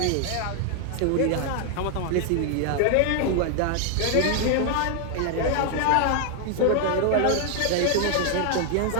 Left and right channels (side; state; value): both; different; correlation 0.00